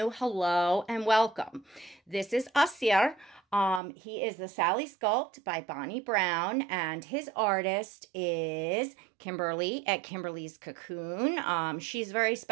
hello and welcome. This is Assir. He is the Sally Sculpt by Bonnie Brown, and his artist is Kymberlee at Kymberlee's Cocoon. She's very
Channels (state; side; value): drops out; left; at 3.8 s